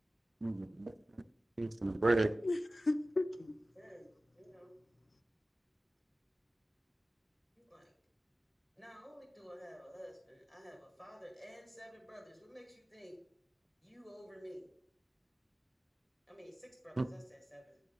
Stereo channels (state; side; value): normal; both; correlation 0.96